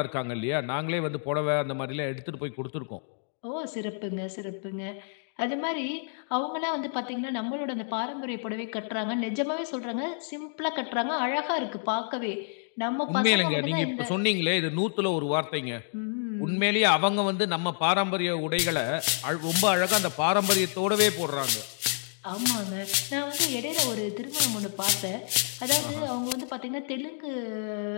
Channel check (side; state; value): right; silent; digital silence